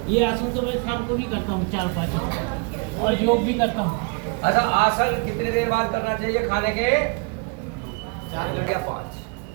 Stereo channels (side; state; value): left; quieter; 34.4 dB